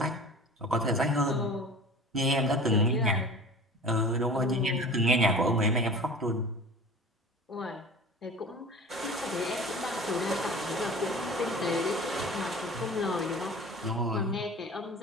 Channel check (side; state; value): both; normal; correlation 0.39